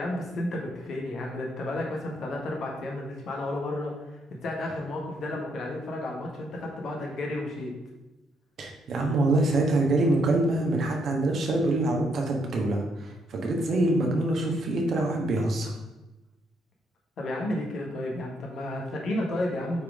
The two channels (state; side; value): normal; both; correlation 0.74